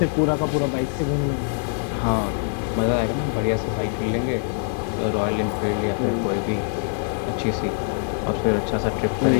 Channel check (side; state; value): right; silent; digital silence